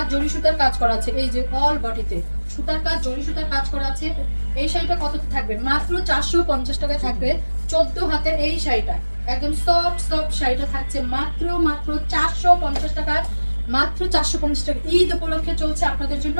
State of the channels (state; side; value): inverted; both; correlation -1.00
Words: জরি সুতার কাজ করা আছে। এই যে অল বডিতে সুতার কাজ, জরি সুতার কাজ করা আছে। এই শাড়িটা কত থাকবে? মাত্র 450 টাকায় থাকবে 14 হাতের এই শাড়িটা। একদম সফট শাড়িটা থাকছে মাত্র 450 টাকায়। মাত্র 450 টাকা। ঈদ উপলক্ষে চলছে আপনাদের জন্য